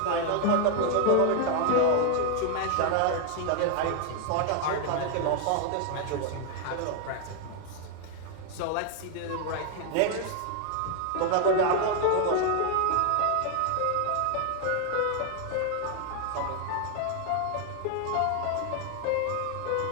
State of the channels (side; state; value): both; different; correlation 0.00